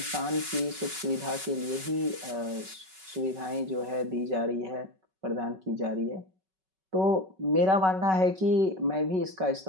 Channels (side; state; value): left; late; 5.3 ms